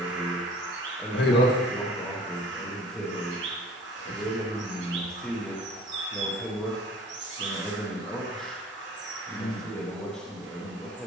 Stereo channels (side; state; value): both; normal; correlation 0.48